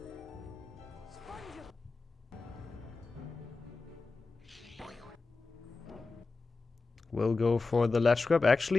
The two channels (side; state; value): right; quieter; 3.9 dB